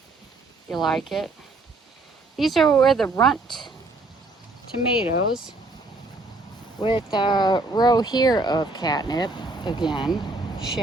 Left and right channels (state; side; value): quieter; left; 3.2 dB